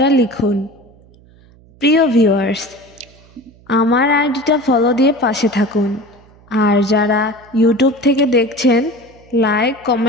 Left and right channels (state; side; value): noise; right; hum, 27 dB below the sound